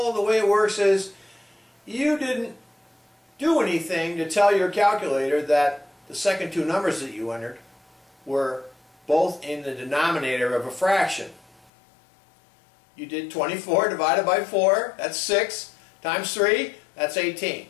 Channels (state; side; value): drops out; right; at 11.7 s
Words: the way it works is you didn't do anything to tell your calculator that the second two numbers that you entered were both in the denominator of a fraction. You did 24 divided by 4, that's 6, times 3, that's 18.